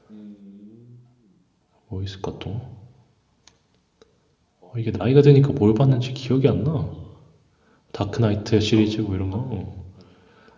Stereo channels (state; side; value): identical; both; correlation 1.00